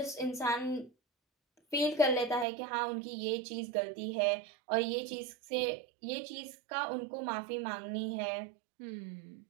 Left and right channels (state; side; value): drops out; left; at 2.5 s